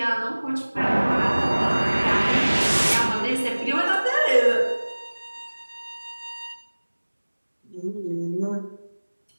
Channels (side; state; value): both; inverted; correlation -1.00